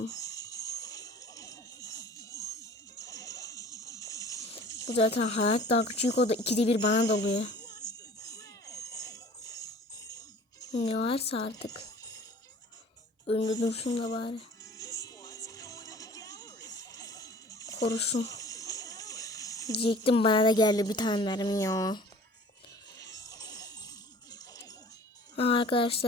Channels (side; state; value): both; normal; correlation 0.47